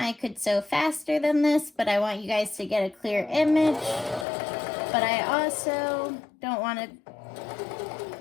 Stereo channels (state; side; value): drops out; right; at 4.2 s